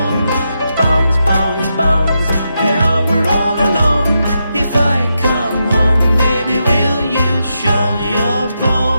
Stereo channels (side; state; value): both; inverted; correlation -0.84